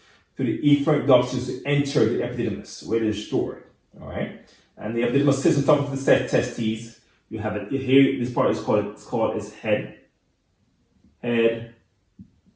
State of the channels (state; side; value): identical; both; correlation 1.00